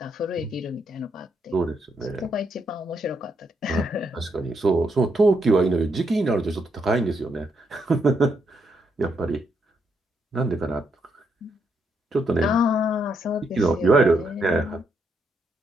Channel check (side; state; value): both; normal; correlation 0.78